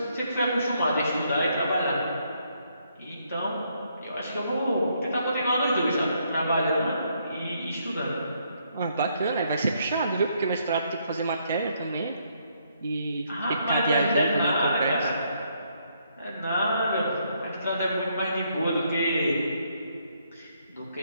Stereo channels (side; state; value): both; inverted; correlation -0.73